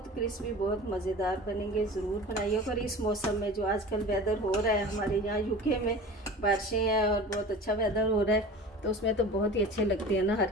क्रिस्पी, बहुत मज़ेदार बनेंगे, ज़रूर बनाइए। और इस मौसम में जो आजकल वेदर हो रहा है हमारे यहाँ यूके में, बारिशें हैं और बहुत अच्छा वेदर हो रहा है, तो उसमें तो बहुत ही अच्छे लगते हैं ना हर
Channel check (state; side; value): normal; both; correlation 0.37